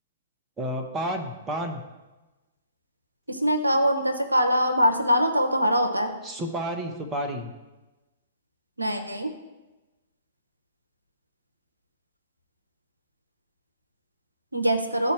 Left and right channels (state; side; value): inverted; both; correlation -0.71